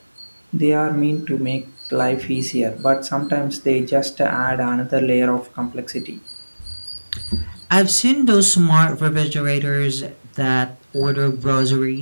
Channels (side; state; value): both; inverted; correlation -1.00